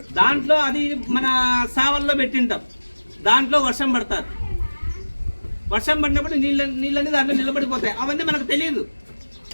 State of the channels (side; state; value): both; inverted; correlation -1.00